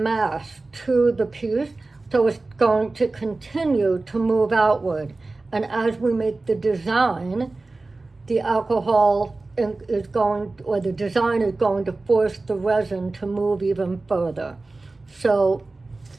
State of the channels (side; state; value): left; quieter; 3.3 dB